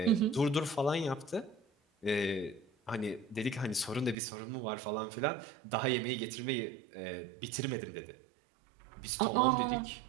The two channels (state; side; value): drops out; left; at 4.2 s